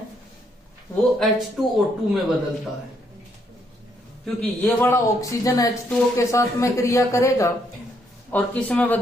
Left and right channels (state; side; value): normal; both; correlation 0.73